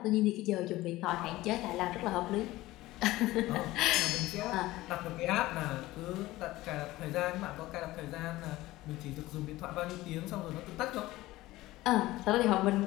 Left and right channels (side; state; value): right; quieter; 17.7 dB